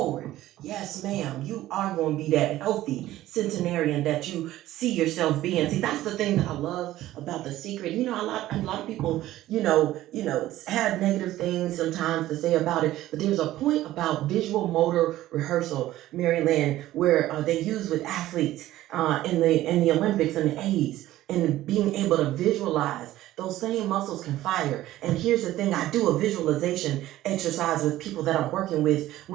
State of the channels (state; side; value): quieter; left; 14.9 dB